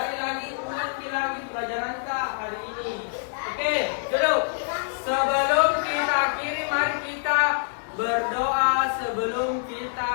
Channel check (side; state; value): right; silent; digital silence